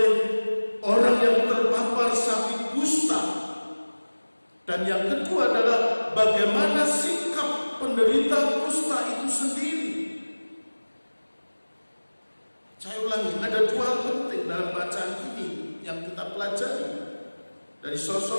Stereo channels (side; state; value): both; inverted; correlation -1.00